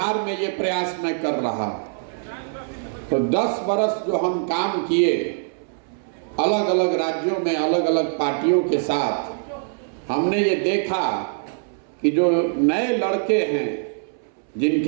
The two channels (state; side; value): silent; left; 63 dB below the other